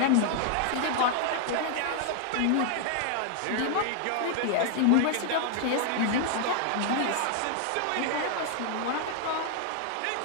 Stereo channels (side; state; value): both; different; correlation 0.00